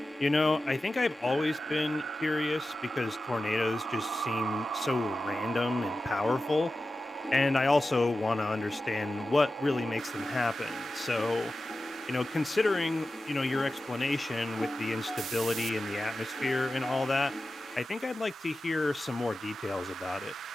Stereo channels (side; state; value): both; normal; correlation 0.93